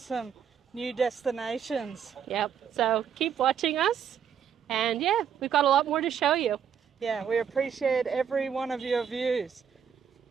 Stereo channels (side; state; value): left; quieter; 8.0 dB